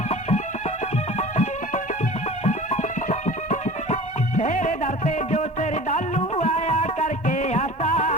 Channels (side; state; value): right; late; 1.1 ms